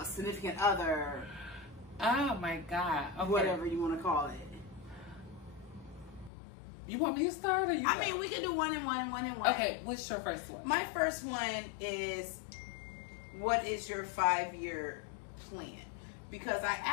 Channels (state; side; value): drops out; right; at 6.3 s